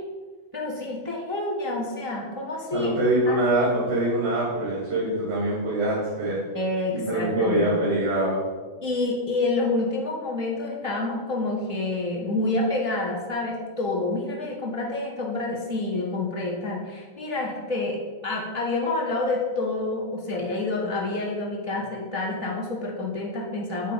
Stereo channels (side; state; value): left; late; 3.1 ms